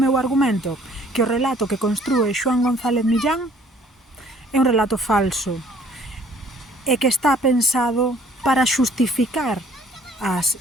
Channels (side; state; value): both; normal; correlation 0.58